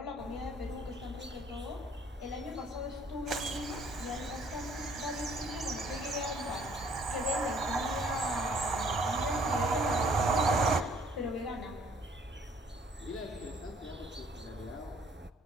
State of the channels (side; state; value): both; normal; correlation 0.60